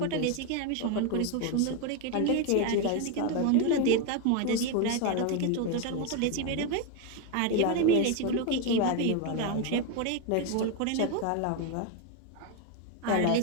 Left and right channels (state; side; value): different; both; correlation 0.01